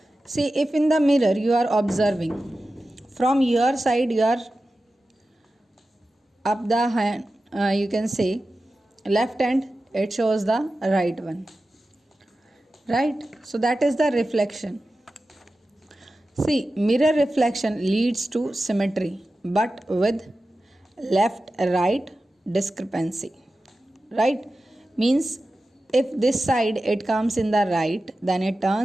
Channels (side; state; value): both; normal; correlation 0.94